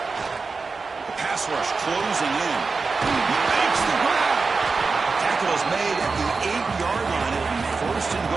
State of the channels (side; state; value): left; quieter; 4.4 dB